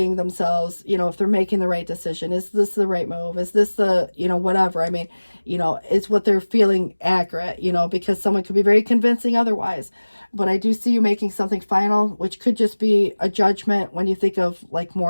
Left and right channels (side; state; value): both; inverted; correlation -1.00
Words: themselves, if they're making the right decision. Is this the right move? Is this the, whatever? I mean, is what they're feeling accurate, because someone could be very convincing otherwise. But I do see you making something final, which could just be a judgment when you think of like